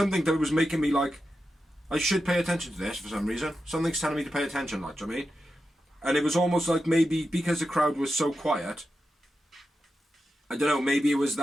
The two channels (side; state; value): both; normal; correlation 0.89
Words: that was making me like, I should pay attention to this for some reason. Something's telling me to pay attention, like, do you know what I mean? And it was almost like maybe because the crowd was so quiet, I don't know, maybe it was